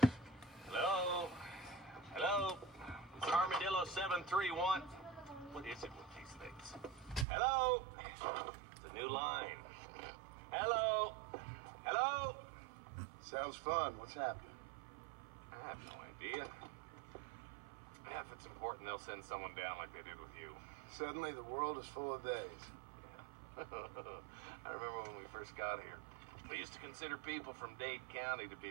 Hello? Hello? It's Armadillo 731. What is it with these things? Hello? It's a new line. Hello? Hello? Sounds fun. What's happening? I have no idea. Yeah, if it's important, they'll send someone down like they did with you. Suddenly, the world is full of days. Yeah. I remember when we first got here. We used to consider people from Dade County to be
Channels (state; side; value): drops out; left; at 7.2 s